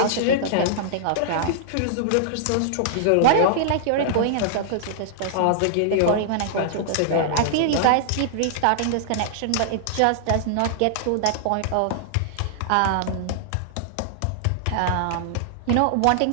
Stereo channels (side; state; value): both; different; correlation -0.01